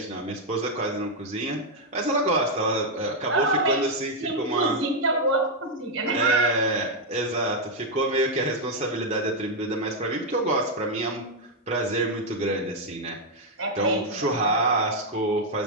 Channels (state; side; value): normal; both; correlation 0.00